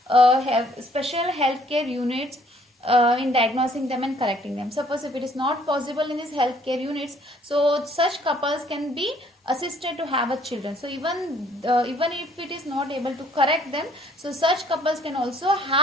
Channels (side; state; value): both; normal; correlation 0.61